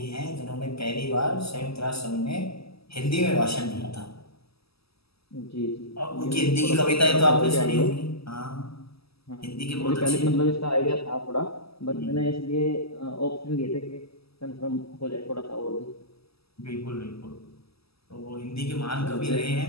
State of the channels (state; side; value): late; right; 0.77 ms